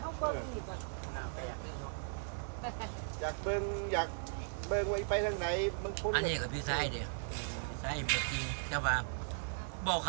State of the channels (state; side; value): silent; left; 53 dB below the other